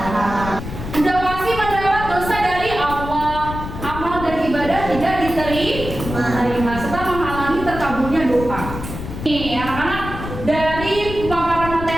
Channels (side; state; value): left; noise; rumble, 8 dB below the sound